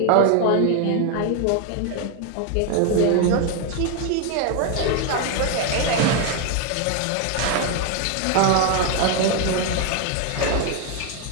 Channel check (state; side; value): different; both; correlation 0.01